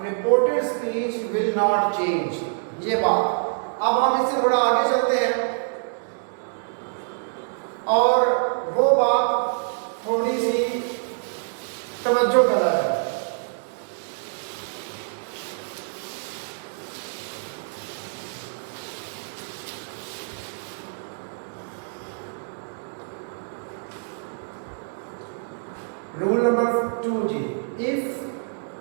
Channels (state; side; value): silent; left; digital silence